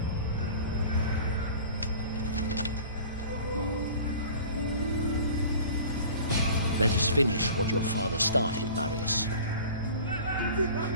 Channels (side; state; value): both; inverted; correlation -0.42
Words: Let us finish what your father started, Marius.